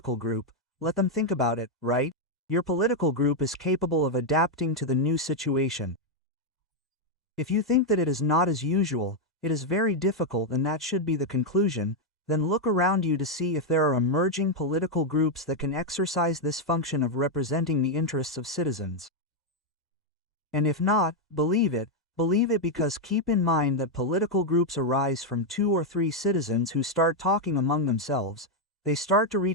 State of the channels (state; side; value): normal; both; correlation 0.01